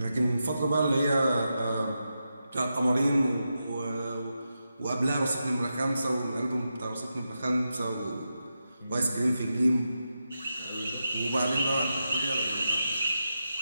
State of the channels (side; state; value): both; inverted; correlation -0.88